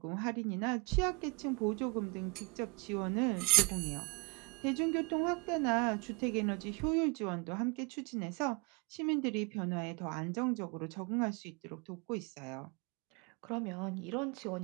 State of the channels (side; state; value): left; quieter; 29.5 dB